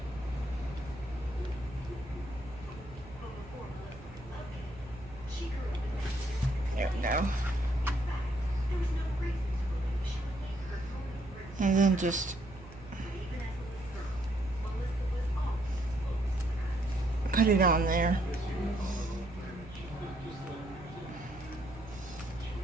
There we go. And then just put it on there.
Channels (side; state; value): right; noise; hum, 18 dB below the sound